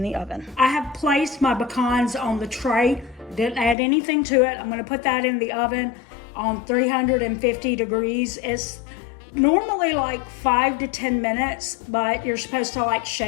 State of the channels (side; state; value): right; drops out; at 3.8 s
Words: the oven. I have placed my pecans on the tray. Didn't add anything to it. I'm going to put that in the oven on 350 degrees. It's normally like 5 to 10 minutes, but you're supposed to like